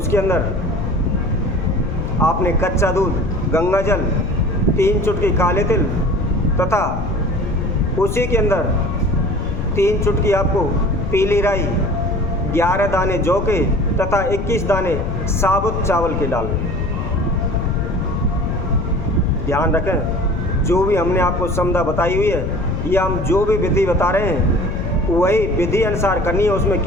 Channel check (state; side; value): noise; left; rumble, 4 dB below the sound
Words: अंदर आपने कच्चा दूध, गंगा जल, 3 चुटकी काले तिल तथा उसी के अंदर 3 चुटकी आपको पीली राई, 11 दाने जौ के तथा 21 दाने साबुत चावल के डालने। ध्यान रखें, जो भी हमने आपको समझा बताई हुई है या हम जो भी विधि बता रहे हैं वही विधि अनुसार करनी है, उसमें